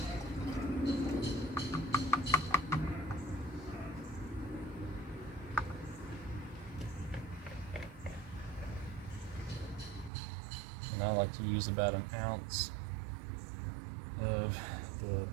And I like to use about an ounce of the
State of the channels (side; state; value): left; drops out; at 10.1 s